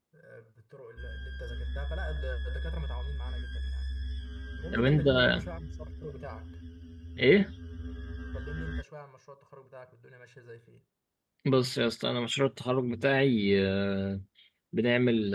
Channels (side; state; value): both; identical; correlation 1.00